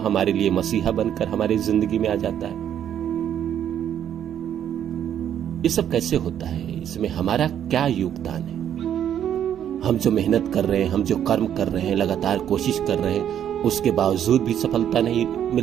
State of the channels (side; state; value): left; quieter; 9.8 dB